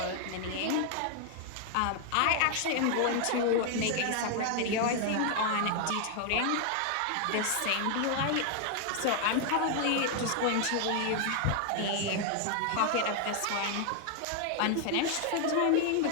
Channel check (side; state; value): both; different; correlation 0.00